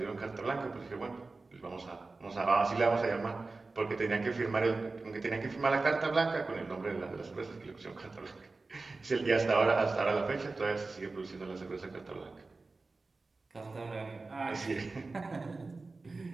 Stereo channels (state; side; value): quieter; left; 3.7 dB